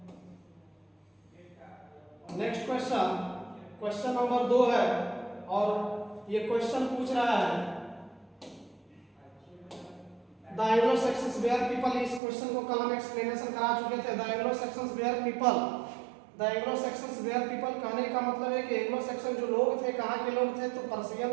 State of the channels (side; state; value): left; drops out; at 12.2 s